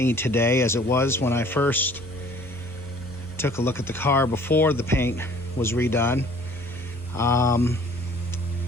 today as it was when I first took a look at the car before the paint was redone.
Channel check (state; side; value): normal; both; correlation 0.53